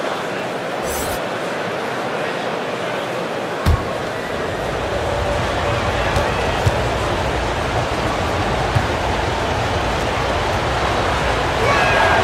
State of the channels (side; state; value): both; identical; correlation 1.00